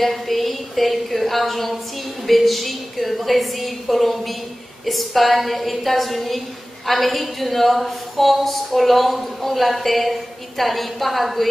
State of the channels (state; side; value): normal; both; correlation 0.97